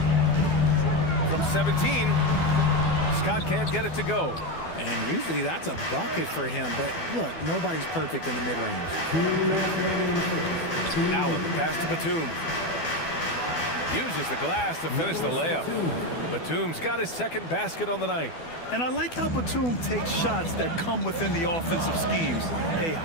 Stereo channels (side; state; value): right; late; 12 ms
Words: From 17, Scott can't get it to go. And usually that's a bucket for him, but look, nobody's perfect in the mid-range. Allen, the pass to Batum. Uses the glass to finish the layup. Batum's got his second basket on the night. And I like how Batum takes shots that come within the offensive schemes. A